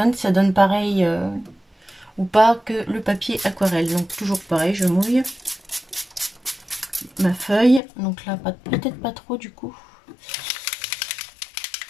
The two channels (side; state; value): right; drops out; at 7.8 s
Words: Ça donne pareil ou pas que le papier aquarelle. Donc toujours pareil, je mouille ma feuille. Donc là, peut-être pas trop du coup.